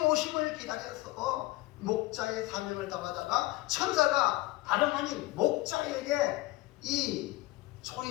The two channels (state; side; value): quieter; right; 18.9 dB